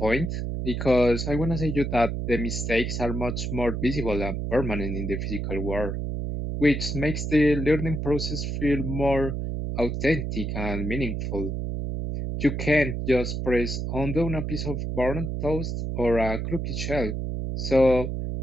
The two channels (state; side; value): noise; right; hum, 3 dB below the sound